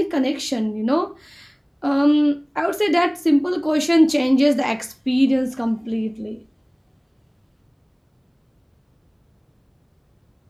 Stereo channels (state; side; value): identical; both; correlation 1.00